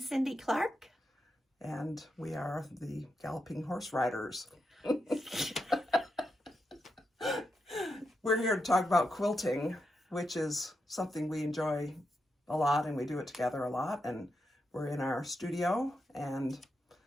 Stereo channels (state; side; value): normal; both; correlation 0.85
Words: Clark. And we are the Galloping Horse Riders. We're here to talk about quilting, which is something we enjoy a lot, and we do it together a lot. And we're in our studio, and